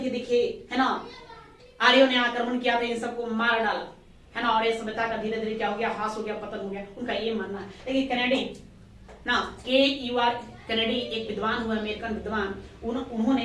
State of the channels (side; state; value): both; identical; correlation 1.00